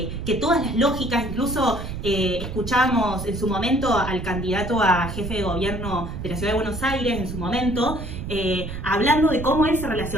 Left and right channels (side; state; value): right; noise; rumble, 8 dB below the sound